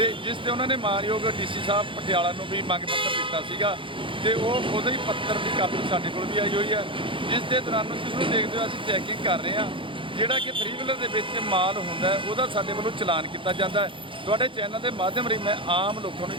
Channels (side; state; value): left; late; 0.25 ms